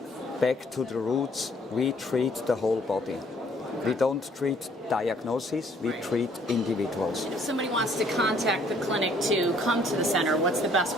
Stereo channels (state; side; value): normal; both; correlation 0.61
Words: back to the roots, we treat the whole body. We don't treat diagnoses, we treat individuals. If somebody wants to contact the clinic to come to the center, what's the best